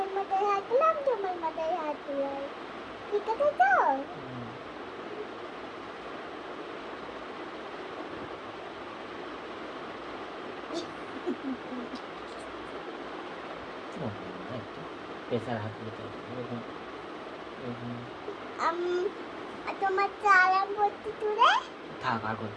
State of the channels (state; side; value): identical; both; correlation 1.00